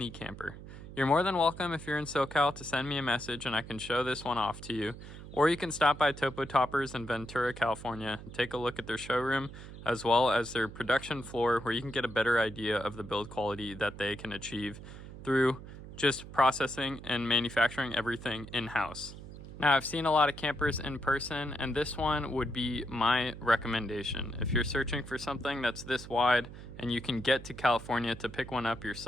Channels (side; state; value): right; noise; hum, 13 dB below the sound